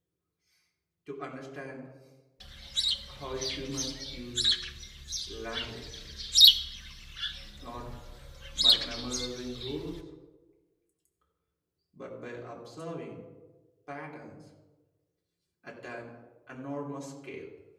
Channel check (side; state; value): both; identical; correlation 1.00